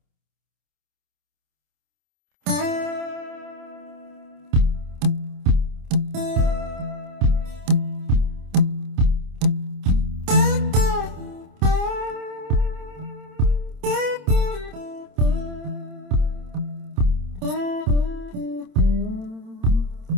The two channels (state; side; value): late; left; 27 ms